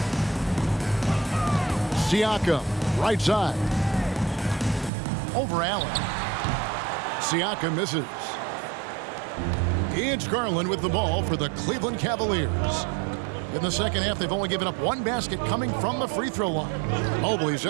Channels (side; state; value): left; drops out; at 4.9 s